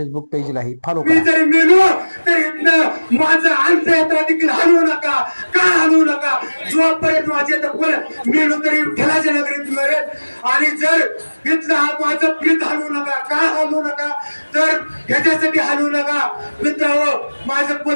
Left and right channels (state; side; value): inverted; both; correlation -1.00